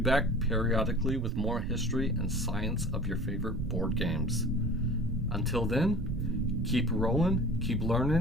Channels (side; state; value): both; normal; correlation 0.41